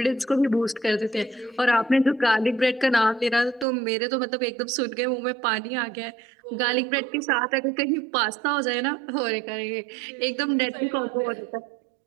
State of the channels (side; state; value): left; drops out; at 3.7 s